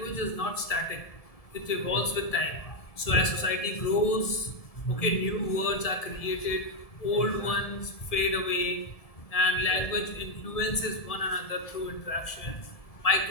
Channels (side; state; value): right; late; 1.7 ms